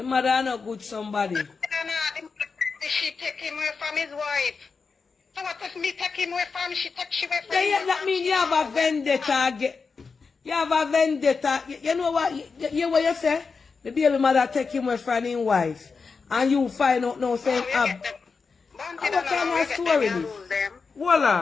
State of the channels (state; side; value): quieter; right; 4.9 dB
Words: mother not good somebody. She take him away from his wife. So what if me take him away from she take she away from Yeah, that means you have a vendetta. You have a vendetta. You know what? You what you say? The baby mother take him away from his wife. And you find out now saying, what kind of story this? Hold